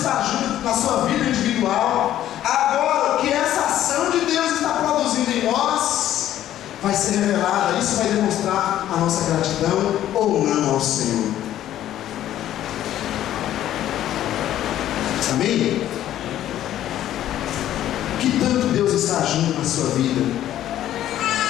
agindo na sua vida individual. Agora, o que essa ação de Deus está produzindo em nós vai ser revelada. Isso vai demonstrar a nossa gratidão ou não ao Senhor. Amém? Que tanto Deus está agindo na sua vida?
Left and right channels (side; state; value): right; quieter; 12.3 dB